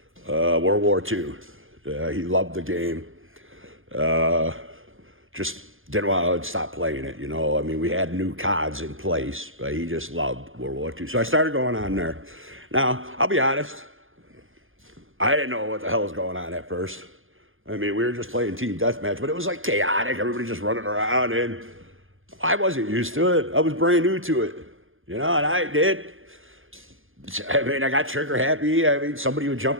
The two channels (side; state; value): left; late; 0.59 ms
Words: World War II. He loved the game. Just didn't want to stop playing it, you know. I mean, we had new CODs in place, but he just loved World War II. So I started going on there. Now, I'll be honest, I didn't know what the hell was going on at first. I mean, we were just playing team deathmatch, but it was like chaotic. Everybody just running around, and I wasn't used to it. I was brand new to it, you know, and I got trigger happy. I mean, somebody would